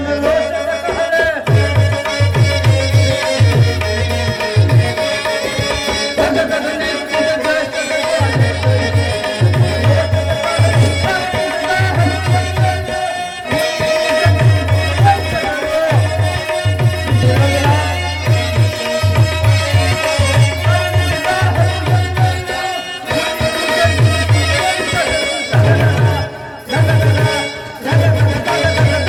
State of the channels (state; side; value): identical; both; correlation 1.00